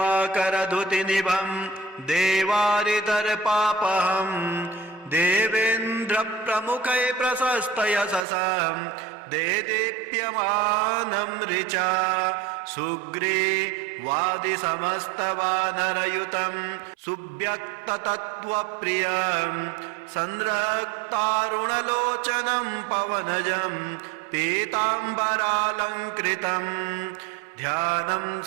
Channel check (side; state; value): left; drops out; at 8.2 s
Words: देवारितर्पापहम् देवेन्द्रप्रमुखै प्रशस्तयशसं देदीप्यमानं ऋचा सुग्रीवादिसमस्तवानरयुतं सुव्यक्ततत्त्वप्रियं संरक्तारुणलोचनं पवनजं पीताम्बरालङ्कृतं ध्यानं